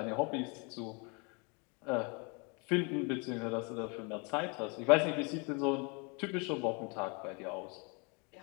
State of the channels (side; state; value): right; quieter; 32.6 dB